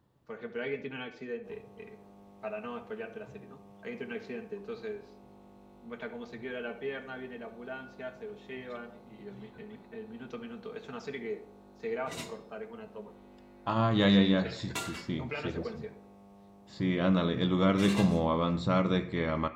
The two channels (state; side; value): identical; both; correlation 1.00